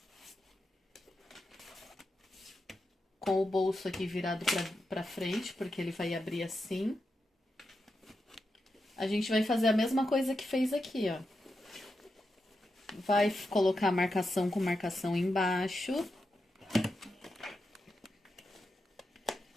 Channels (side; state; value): both; normal; correlation 0.87